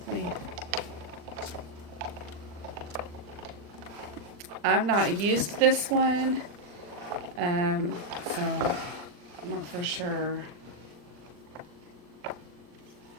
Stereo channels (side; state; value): left; late; 40 ms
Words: me. I've not used this one, so I'm not for sure